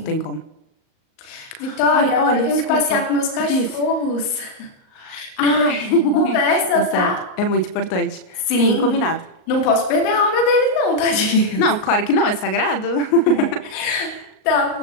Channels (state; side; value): late; right; 38 ms